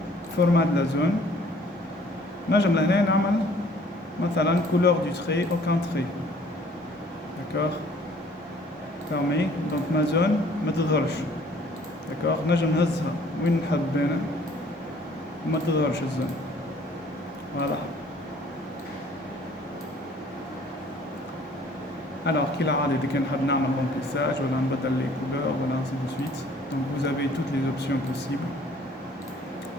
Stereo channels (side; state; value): both; normal; correlation 0.56